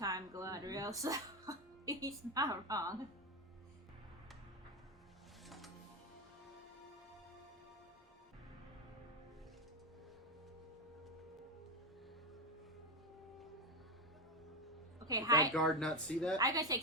Galadriel, so he's not wrong. Okay, Did hide. that guard not see that? I gotta say,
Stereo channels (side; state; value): both; normal; correlation 0.13